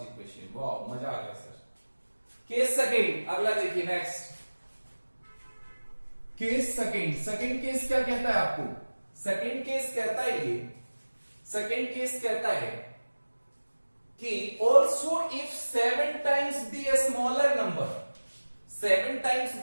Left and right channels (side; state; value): both; inverted; correlation -1.00